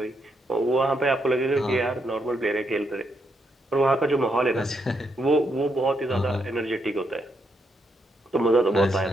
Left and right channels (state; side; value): normal; both; correlation 0.78